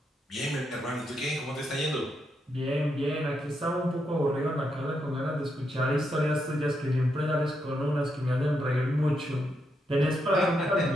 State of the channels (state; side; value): normal; both; correlation 0.81